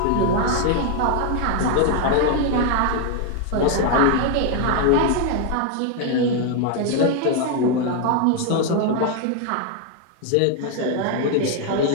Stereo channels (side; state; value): both; different; correlation 0.01